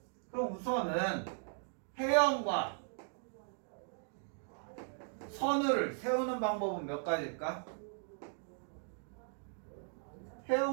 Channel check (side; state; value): left; silent; 52 dB below the other